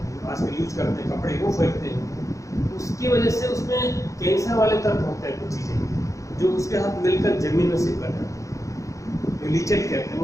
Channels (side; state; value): right; late; 0.15 ms